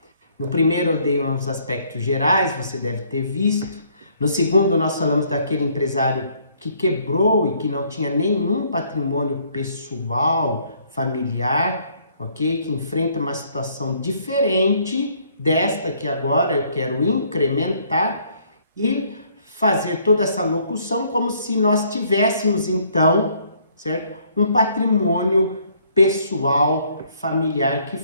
No primeiro eu dei uns aspectos gerais, você deve ter visto. No segundo nós falamos daquele empresário que quebrou e que não tinha nenhum patrimônio pessoal, familiar, ok? Que enfrenta uma situação diferente desta que agora eu quero incrementar e fazer toda essa locução como se nós tivéssemos então, certo? Um patrimônio pessoal, familiar que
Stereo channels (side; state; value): both; inverted; correlation -0.65